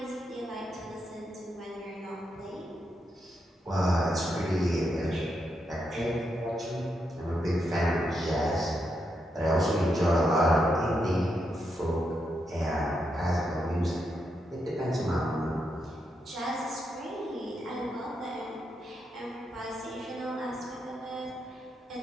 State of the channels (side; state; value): both; normal; correlation 0.83